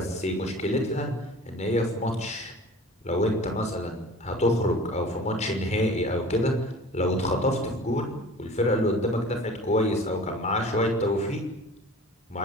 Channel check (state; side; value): normal; both; correlation 0.43